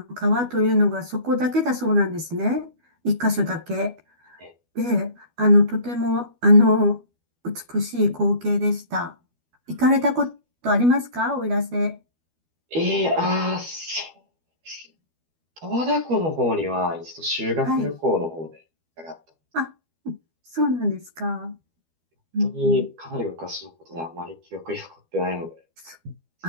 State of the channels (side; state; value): left; late; 12 ms